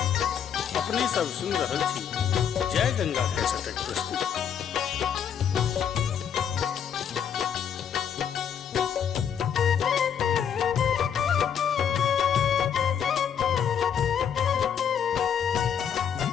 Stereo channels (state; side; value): quieter; right; 8.2 dB